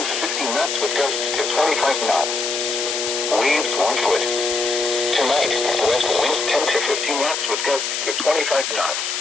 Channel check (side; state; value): left; noise; hiss, 2 dB below the sound